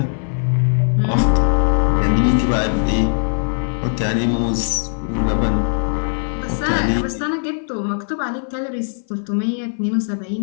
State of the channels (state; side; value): silent; right; 58 dB below the other